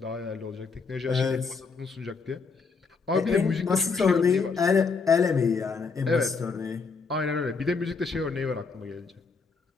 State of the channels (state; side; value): quieter; right; 4.8 dB